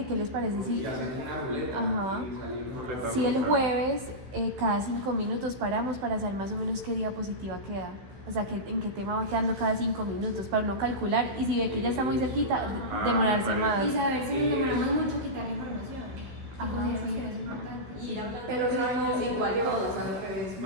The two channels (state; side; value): late; left; 15 ms